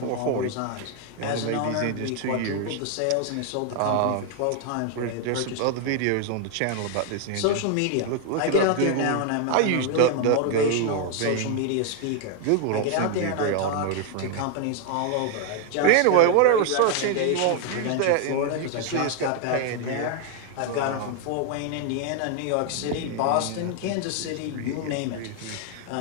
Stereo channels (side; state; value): both; different; correlation 0.01